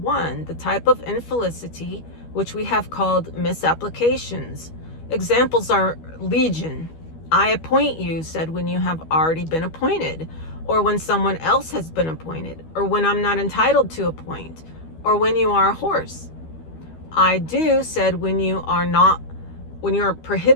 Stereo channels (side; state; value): right; late; 12 ms